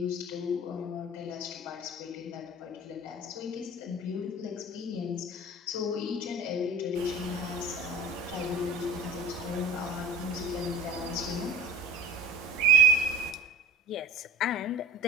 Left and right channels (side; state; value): both; normal; correlation 0.39